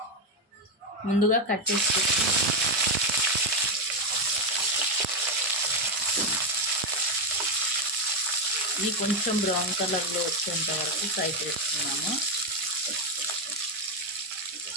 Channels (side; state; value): both; normal; correlation 0.07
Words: ముందుగా కట్ చేసుకుంటాను. ఇది కొంచెం బ్రౌన్ కలర్లో వచ్చేంత వరకు ఫ్రై చేసుకున్నాము.